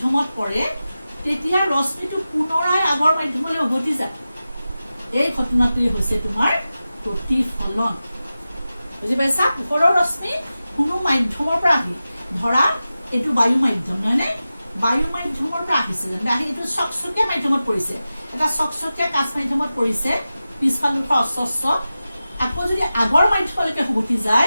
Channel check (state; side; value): inverted; both; correlation -0.94